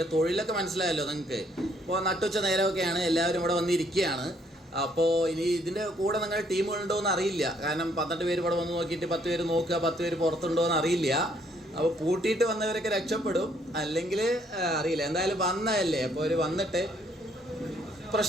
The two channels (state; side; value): normal; both; correlation 0.67